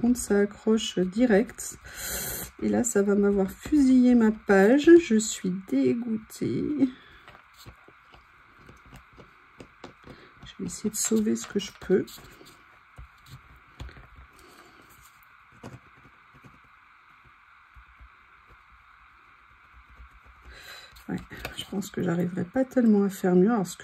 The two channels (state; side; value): identical; both; correlation 1.00